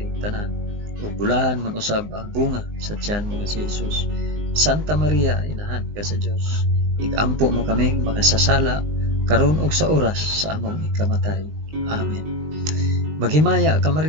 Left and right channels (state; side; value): late; left; 19 ms